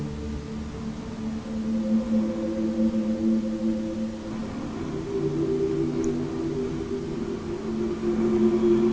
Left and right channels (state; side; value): identical; both; correlation 1.00